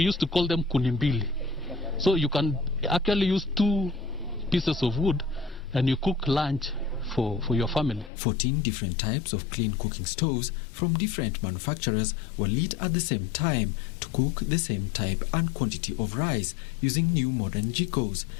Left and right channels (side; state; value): right; drops out; at 8.1 s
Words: used to call them kunimbili. So you can actually use 2 pieces of wood and you cook lunch for your family. 14 different types of clean cooking stoves from different manufacturers were lit at the same time to cook the same type and quantity of rice using new modern jikos